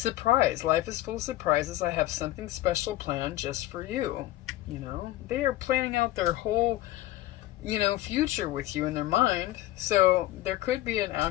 Life is full of surprises. I have something special planned just for you. You know, they are planning out their whole, future with you in their mind. So there could be an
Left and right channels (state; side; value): quieter; right; 15.6 dB